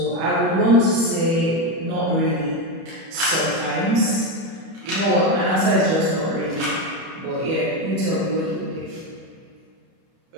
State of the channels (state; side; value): late; left; 31 ms